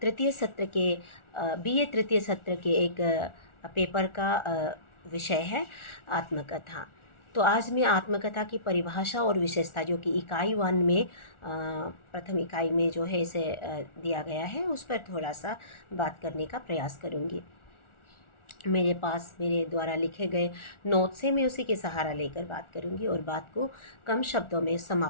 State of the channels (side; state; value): right; late; 1.4 ms